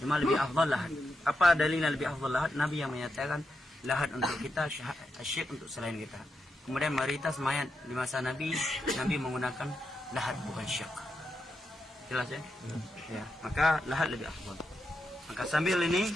lebih afdal lahat. Apa dalilnya lebih afdal lahat? Nabi yang menyatakan lahat untuk kita, syek untuk selain kita. Kemudian mayoritas mayat di masa Nabi menggunakan lahat bukan syek. Jelas ya? Ya, maka lahat lebih afdal. Maka sambil ini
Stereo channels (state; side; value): normal; both; correlation 0.85